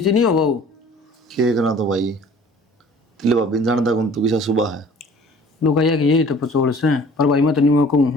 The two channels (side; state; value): both; normal; correlation 0.49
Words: नहीं हो वो। के करना तो भाई तिले भाभी जानता कौन तू किसा सुबह है। लोग कहिए कि यही तो पचोड़ से, पर भाई मैं तो नहीं कहूँ